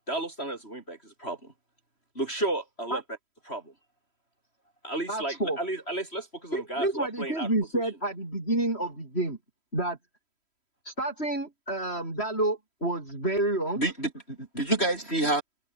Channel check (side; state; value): right; late; 3.1 ms